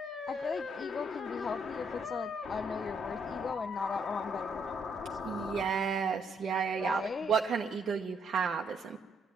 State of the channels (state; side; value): normal; both; correlation 0.72